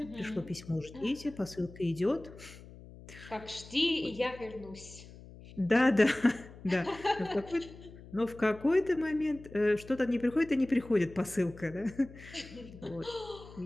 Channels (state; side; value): noise; left; hum, 18 dB below the sound